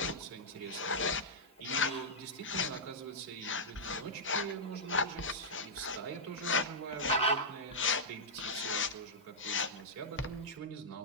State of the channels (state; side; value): normal; both; correlation -0.10